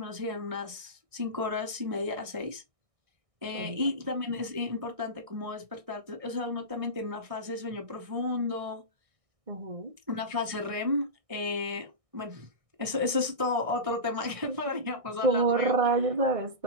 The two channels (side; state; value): left; late; 1.6 ms